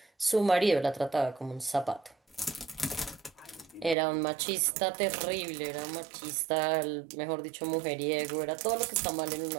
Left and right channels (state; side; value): drops out; left; at 4.0 s